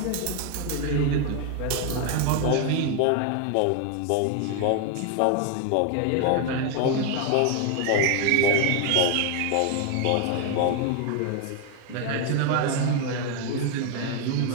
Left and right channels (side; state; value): both; different; correlation 0.01